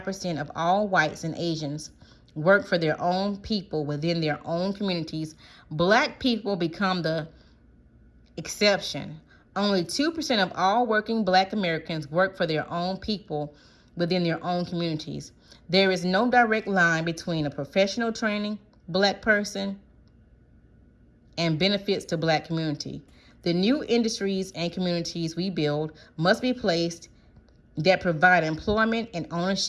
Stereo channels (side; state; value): both; identical; correlation 1.00